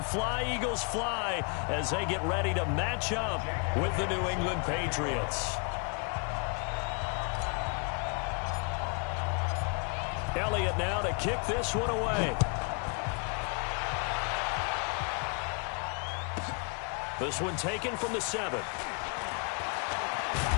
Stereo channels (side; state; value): right; quieter; 37.2 dB